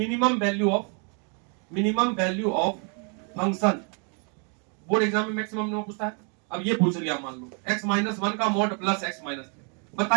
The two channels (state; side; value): quieter; left; 38.4 dB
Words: value of function, board exam में मैक्सिमम में पूछता है। अब ये पूछ लिया, मान लो x माइनस 1 का मॉड प्लस x माइनस 3,